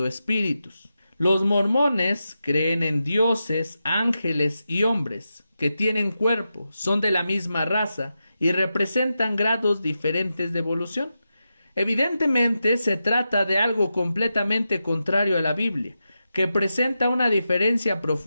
espíritus. Los mormones creen en dioses, ángeles y hombres que tienen cuerpo, son de la misma raza y representan grados diferentes de evolución. Evidentemente se trata de algo completamente contrario a la Biblia, que presenta una diferencia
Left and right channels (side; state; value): both; inverted; correlation -0.89